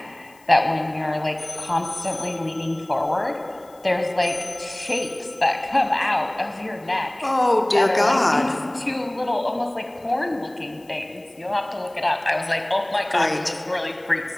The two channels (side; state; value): left; noise; hiss, 29 dB below the sound